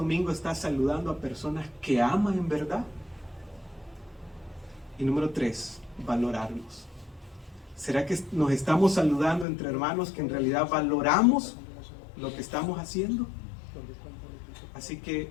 está saludando a personas que ama en verdad? Y número 3, valorarnos. ¿Será que nos estamos saludando entre hermanos que en realidad valoramos lo que estamos haciendo? Así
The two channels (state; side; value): drops out; right; at 9.5 s